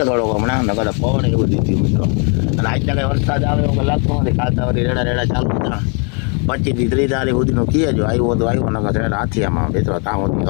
થોડોક હમણાં, નકર પવન એ બધું થયું મિત્રો. અને આજના કંઈ વરસાદ આવે એવું લાગતું નથી. કાલ તો વળી રેડા ચાલુ હતા. 25 થી 30 તારીખ સુધીનું કીએ જો આવ્યો તો આવ્યો, નકર રેડા હાથિયામાં મિત્રો ત્યાં સુધી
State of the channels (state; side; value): quieter; right; 37.7 dB